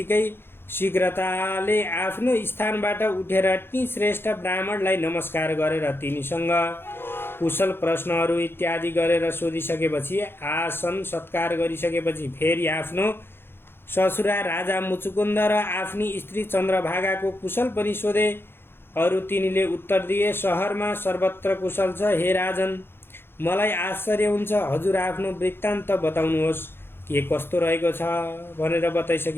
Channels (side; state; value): right; late; 0.11 ms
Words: शीघ्रताले आफ्नो स्थानबाट उठेर ती श्रेष्ठ ब्राह्मणलाई नमस्कार गरेर तिनीसँग कुशल प्रश्नहरू इत्यादि गरेर सोधिसकेपछि आसन सत्कार गरिसकेपछि फेरि आफ्नो ससुरा राजा मुचुकुन्द र आफ्नी स्त्री चन्द्रभागाको कुशल पनि सोधे। अरू तिनीले उत्तर दिए, सहरमा सर्वत्र कुशल छ। हे राजन, मलाई आश्चर्य हुन्छ, हजुर आफ्नो वृत्तान्त बताउनुहोस्, के कस्तो रहेको छ भनेर